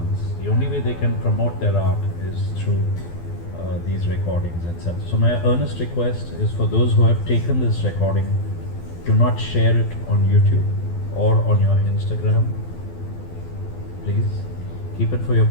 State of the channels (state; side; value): late; right; 12 ms